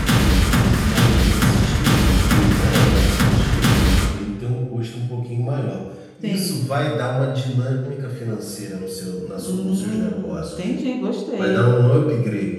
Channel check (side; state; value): both; identical; correlation 1.00